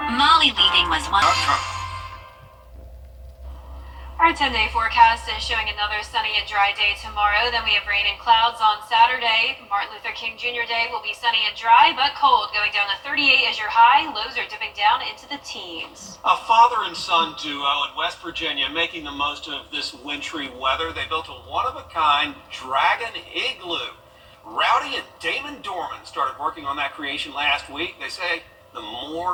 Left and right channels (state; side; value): identical; both; correlation 1.00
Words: Molly leaving was one. Our 10-day forecast is showing another sunny and dry day tomorrow. Then we have rain and clouds on Saturday. Martin Luther King Jr. Day will be sunny and dry, but cold, going down to 38 as your high. Lows are dipping down into the teens. A father and son duo in West Virginia making the most of this wintry weather. They built a one-of-a-kind dragon igloo. Rowdy and Damon Dorman started working on that creation last week. They say the